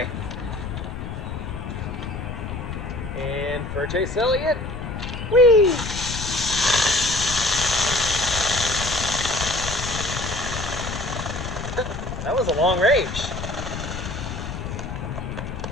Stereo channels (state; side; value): noise; left; rumble, 7 dB below the sound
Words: And for Chase Elliott, whee! That was a long range.